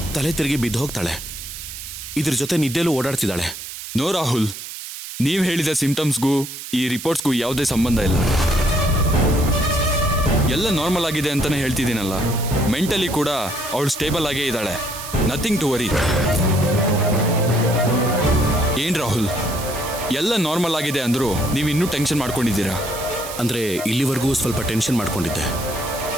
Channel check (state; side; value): noise; right; hiss, 10 dB below the sound